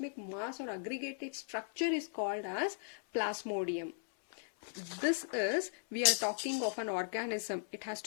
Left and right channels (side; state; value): right; silent; 53 dB below the other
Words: mass or aggregated structure is called as plasmodium. This is, we are talking of an organism. It has